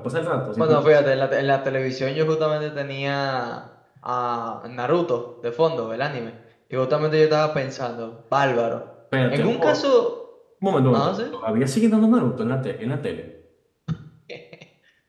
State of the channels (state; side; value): identical; both; correlation 1.00